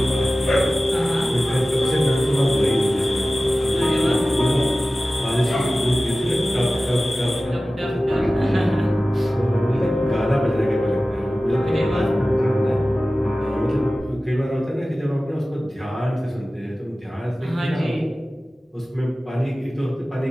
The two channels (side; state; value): both; normal; correlation 0.96